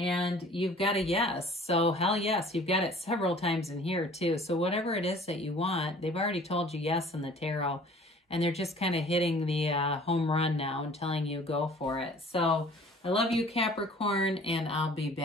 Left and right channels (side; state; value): both; normal; correlation 0.50